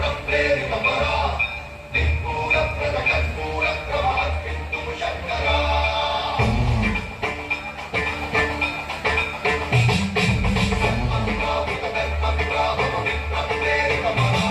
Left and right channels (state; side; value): identical; both; correlation 1.00